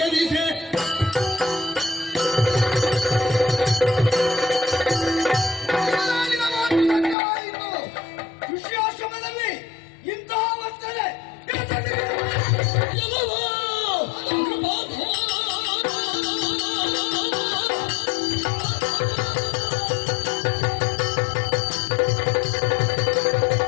ಋಷ್ಯಾಶ್ರಮದಲ್ಲಿ ಇಂತಹ ವರ್ತನೆ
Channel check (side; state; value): right; drops out; at 7.2 s